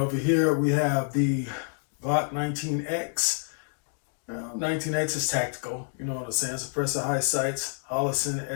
here we have the Glock 19X. 19X is tactical, you know what I'm saying? Suppressor high sights, Hollison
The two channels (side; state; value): right; silent; digital silence